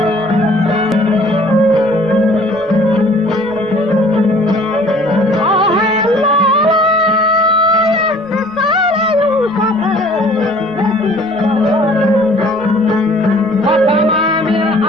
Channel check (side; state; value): right; noise; rumble, 25 dB below the sound